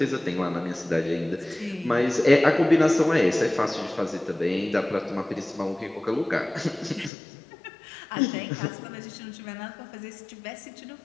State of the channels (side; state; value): right; drops out; at 7.1 s